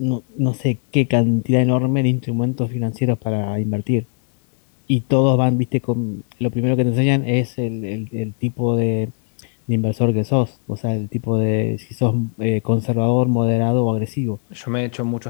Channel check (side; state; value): right; silent; 63 dB below the other